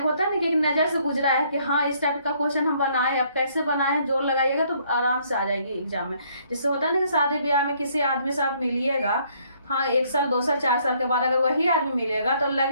है ना कि एक नज़र से गुजरा है कि हाँ इस टाइप का क्वेश्चन हम बनाए, अब कैसे बनाए, जोर लगाइएगा तो आराम से आ जाएगी एग्जाम में। जिससे होता है ना कि शादी ब्याह में किसी आदमी से आप मिलिएगा, हाँ 1 साल 2 साल 4 साल के बाद अगर वही आदमी मिलेगा तो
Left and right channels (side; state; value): both; inverted; correlation -0.66